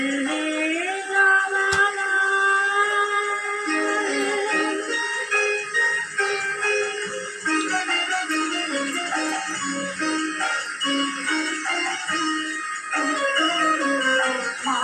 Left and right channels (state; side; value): identical; both; correlation 1.00